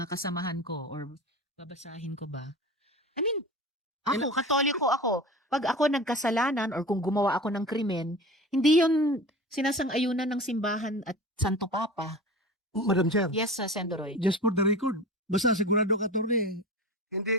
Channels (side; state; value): both; normal; correlation 0.34